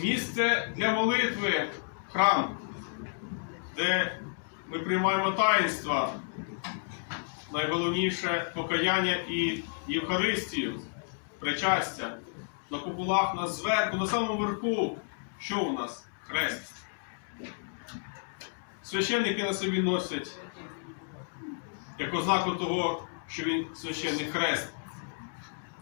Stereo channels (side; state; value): right; silent; digital silence